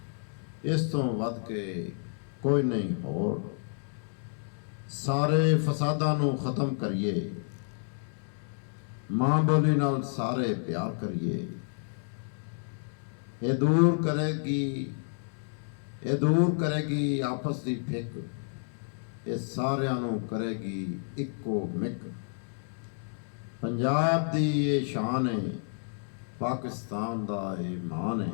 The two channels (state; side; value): silent; right; digital silence